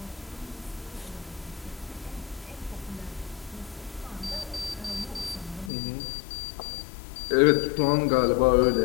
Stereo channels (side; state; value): right; drops out; at 5.7 s